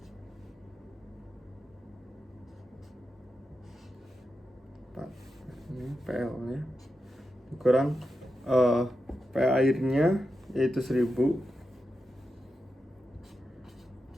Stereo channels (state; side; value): normal; both; correlation 0.89